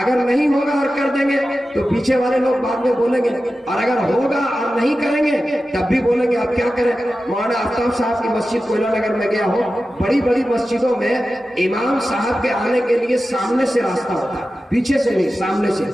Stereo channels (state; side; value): normal; both; correlation 0.93